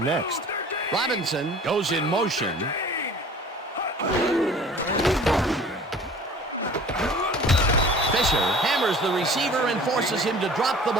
Robinson goes in motion. Fisher hammers the receiver and forces him to drop the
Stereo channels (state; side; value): normal; both; correlation 0.46